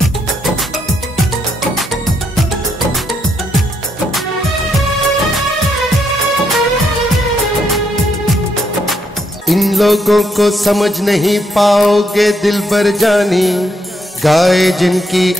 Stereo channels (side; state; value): both; normal; correlation 0.76